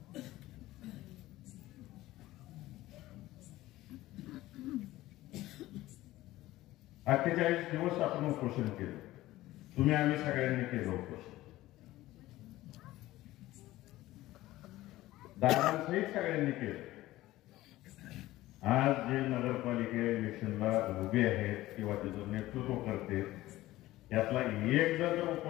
48 दिवस आपण उपोषण केलं. तुम्ही आम्ही सगळ्यांनी केलं उपोषण. दादांसहित सगळ्यांनी केलं. आज जे नगरपालिका इलेक्शनला उभे आहेत किंवा त्याचं नेतृत्व करते यातला एक जण जर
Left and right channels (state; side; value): quieter; right; 16.6 dB